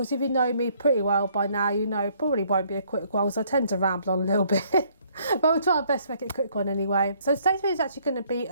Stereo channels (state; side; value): inverted; both; correlation -0.65